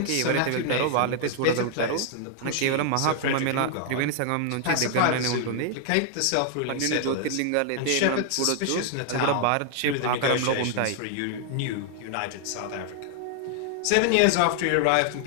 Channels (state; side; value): different; both; correlation 0.00